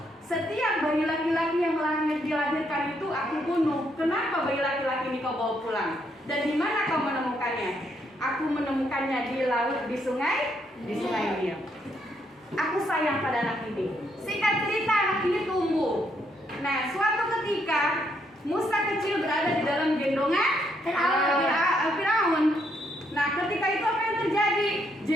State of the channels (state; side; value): normal; both; correlation 0.74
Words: setiap bayi laki-laki yang dilahirkan itu aku bunuh. Kenapa bayi laki-laki ini kau bawa pulang? Dan di mana kau menemukannya? Aku menemukannya di laut, di sungai Nil. Aku sayang pada anak ini. Singkat cerita, anak ini tumbuh. Nah, suatu ketika Musa kecil berada di dalam gendongan Firaun. Nah, ketika itu apa yang terjadi?